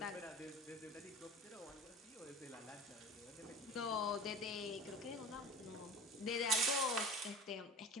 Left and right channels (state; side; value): normal; both; correlation 0.36